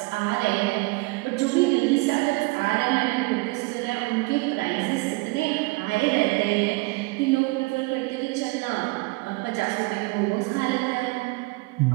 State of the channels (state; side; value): quieter; left; 24.8 dB